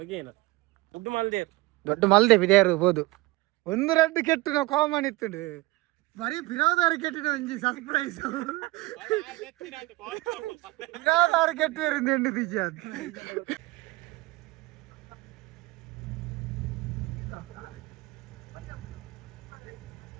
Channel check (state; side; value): quieter; left; 21.4 dB